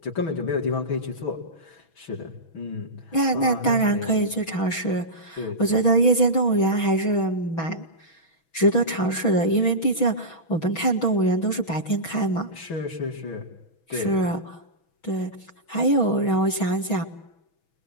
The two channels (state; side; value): late; right; 6.2 ms